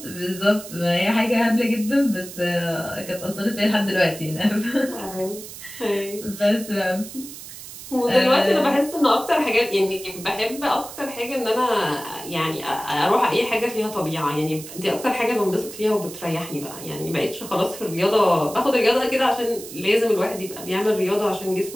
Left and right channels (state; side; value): noise; right; hiss, 13 dB below the sound